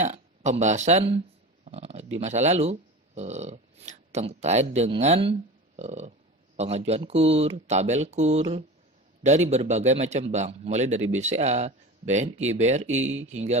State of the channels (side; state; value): both; normal; correlation 0.32